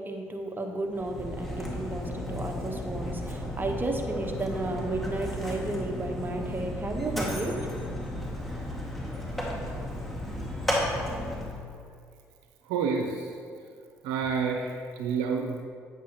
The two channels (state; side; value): normal; both; correlation 0.65